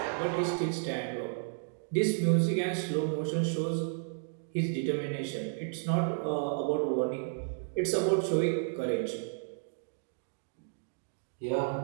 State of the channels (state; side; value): silent; left; digital silence